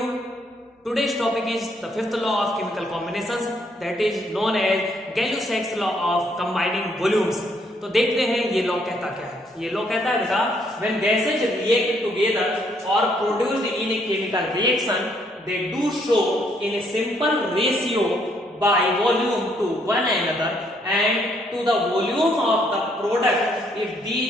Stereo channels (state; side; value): normal; both; correlation 0.70